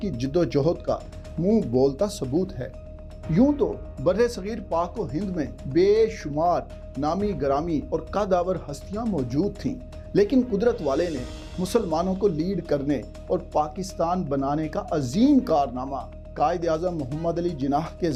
جد و جہد کا منہ بولتا ثبوت ہے۔ یوں تو بر صغیر پاک و ہند میں بے شمار نامی گرامی اور قدآور ہستیاں موجود تھیں، لیکن قدرت والے نے مسلمانوں کو لیڈ کرنے اور پاکستان بنانے کا عظیم کارنامہ قائد اعظم محمد علی جناح کے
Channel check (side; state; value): both; identical; correlation 1.00